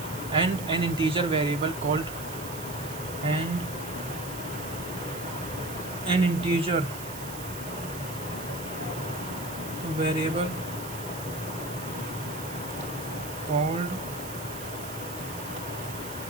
and an integer variable called and an integer variable called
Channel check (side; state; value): right; noise; hiss, 11 dB below the sound